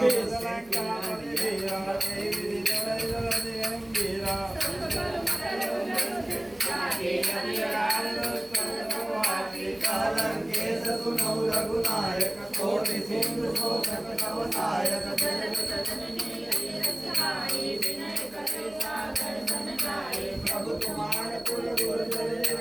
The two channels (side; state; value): left; noise; hum, 26 dB below the sound